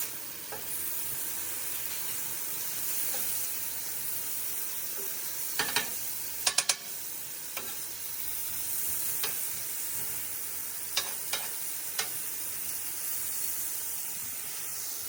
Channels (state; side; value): quieter; left; 3.6 dB